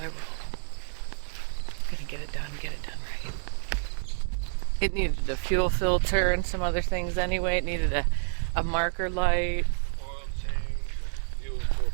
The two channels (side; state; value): left; silent; digital silence